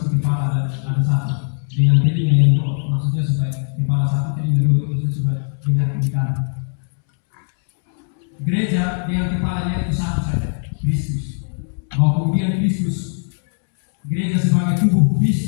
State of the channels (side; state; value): right; silent; 66 dB below the other